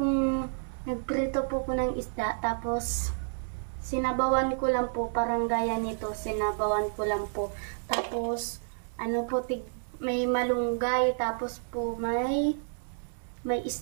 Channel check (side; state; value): left; silent; 58 dB below the other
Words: nagprito po ko ng isda. Tapos, sinabawan ko lang po. Parang gaya nito. Sinabawan ko lang po. Tapos, may malunggay, tapos po may